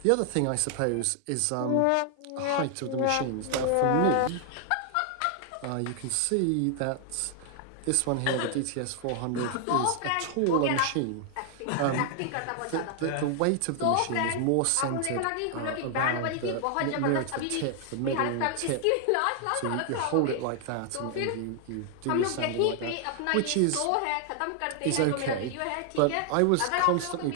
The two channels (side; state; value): both; different; correlation 0.00